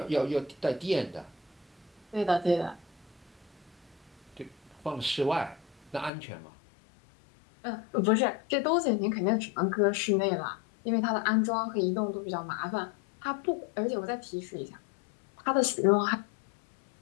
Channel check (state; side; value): drops out; right; at 6.1 s